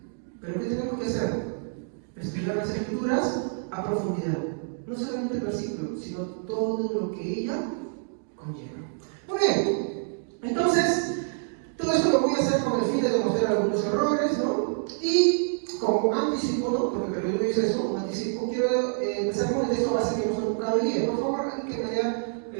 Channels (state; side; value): silent; left; digital silence